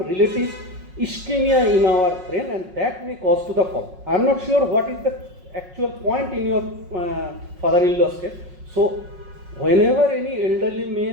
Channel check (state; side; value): late; left; 5.5 ms